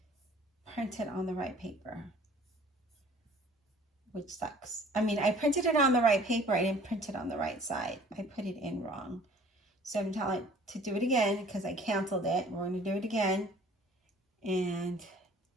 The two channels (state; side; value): normal; both; correlation 0.52